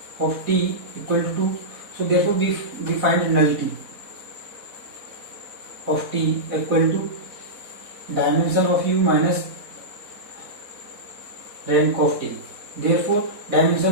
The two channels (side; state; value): left; late; 4.1 ms